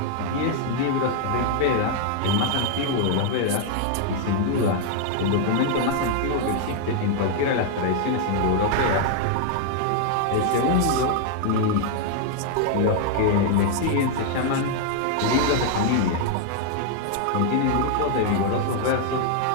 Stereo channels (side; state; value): both; different; correlation 0.00